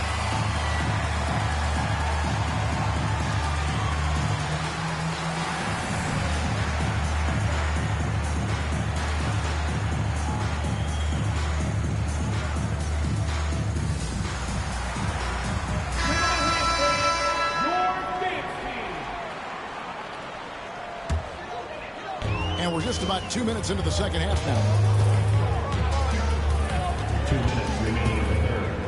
And we're just about 2 minutes into the second half now. 2 minutes remaining in the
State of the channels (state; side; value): identical; both; correlation 1.00